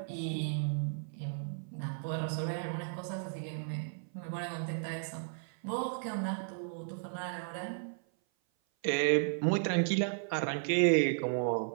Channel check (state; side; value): silent; left; 55 dB below the other